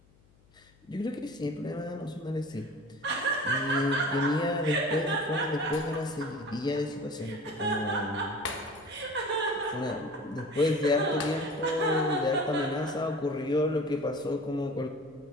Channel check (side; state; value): left; noise; hum, 30 dB below the sound